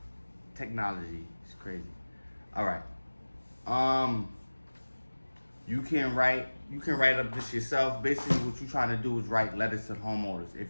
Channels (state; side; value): inverted; both; correlation -1.00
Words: Technology is crazy. All right. You can write up this yourself. Basically, what you're trying to do is write letters to homeowners.